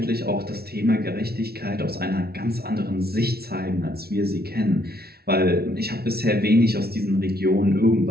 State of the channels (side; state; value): left; late; 0.45 ms